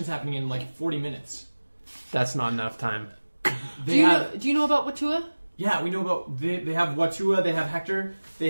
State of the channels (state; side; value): inverted; both; correlation -1.00